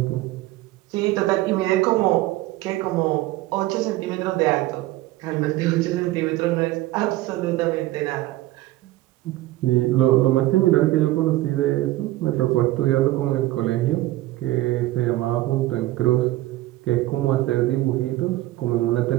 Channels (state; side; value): quieter; left; 17.1 dB